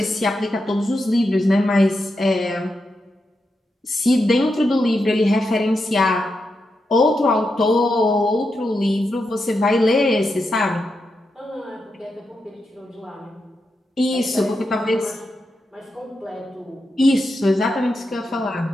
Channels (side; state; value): both; normal; correlation 0.86